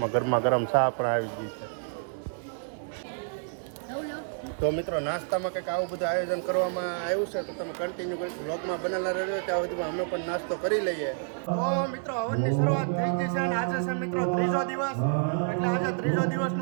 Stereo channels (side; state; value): left; silent; 59 dB below the other